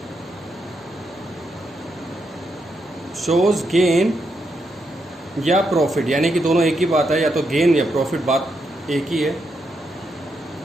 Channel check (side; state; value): both; normal; correlation 0.81